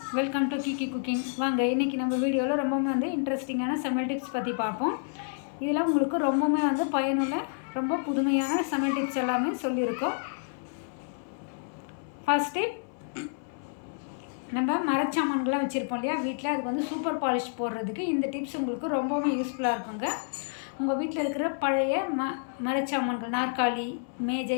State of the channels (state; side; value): silent; right; 58 dB below the other